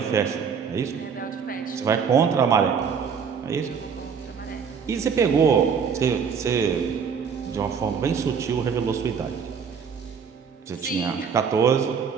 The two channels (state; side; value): quieter; left; 6.5 dB